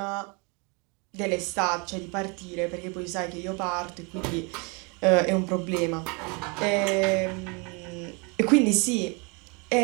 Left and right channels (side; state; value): left; quieter; 31.5 dB